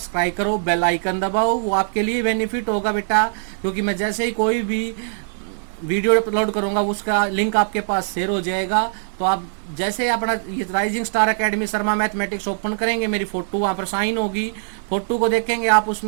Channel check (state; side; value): silent; left; digital silence